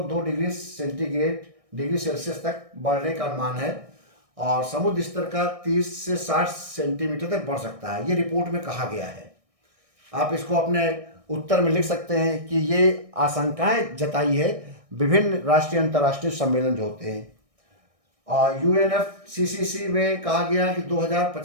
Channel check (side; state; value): left; late; 1.6 ms